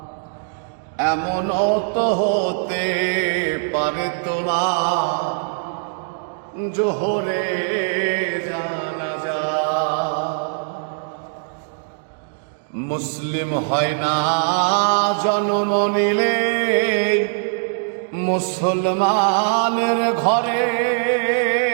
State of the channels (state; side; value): silent; left; digital silence